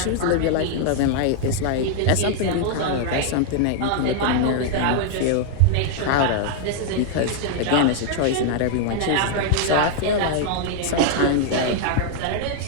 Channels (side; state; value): both; different; correlation -0.01